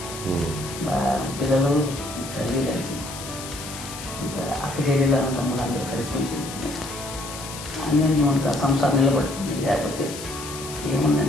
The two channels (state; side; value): noise; left; hiss, 11 dB below the sound